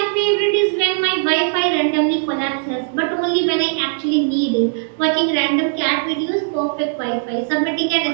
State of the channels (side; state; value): left; silent; digital silence